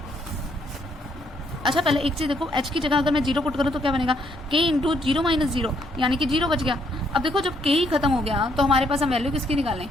अच्छा पहले एक चीज देखो, h की जगह अगर मैं 0 पुट करूँ तो क्या बनेगा k इंटू 0 माइनस 0, यानी कि 0 बच गया। अब देखो जब k ही खत्म हो गया तो हमारे पास हम वैल्यू किसकी निकालें।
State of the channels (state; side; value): normal; both; correlation 0.71